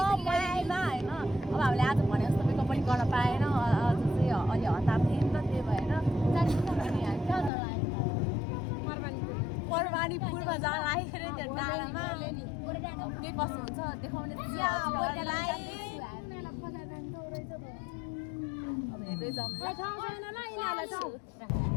पहिला होइन। अब हामीले आज भने जस्तो मेकअप पनि गर्न पाएन, अझ चाहिँ अलि हतार थिएँ नि त, त्यही भएर परवानीपुरमा जान लागेको अरे त्यो डाँडामा। के कस्तो हुन्छ देखाउने अब हेर्दै जाउँ।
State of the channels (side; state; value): right; drops out; at 7.5 s